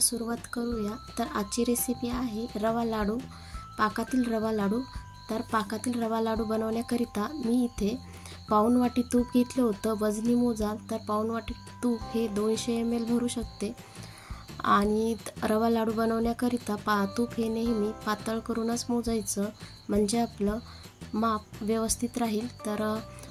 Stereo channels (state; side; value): identical; both; correlation 1.00